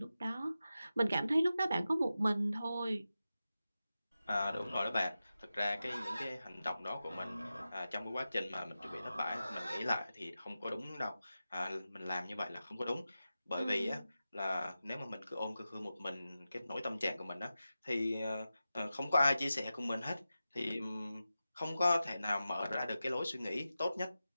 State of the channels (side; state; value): both; inverted; correlation -0.93